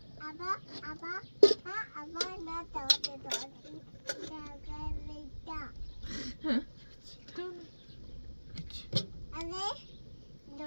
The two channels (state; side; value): inverted; both; correlation -1.00